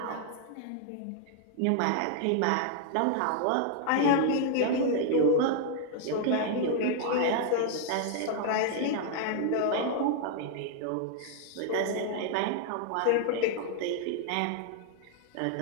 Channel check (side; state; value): both; different; correlation 0.00